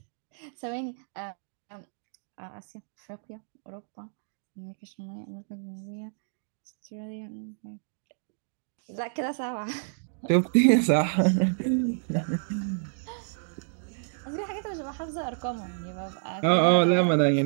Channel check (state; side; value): silent; left; digital silence